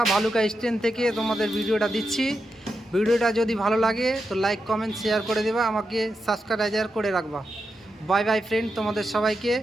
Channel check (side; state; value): both; normal; correlation 0.87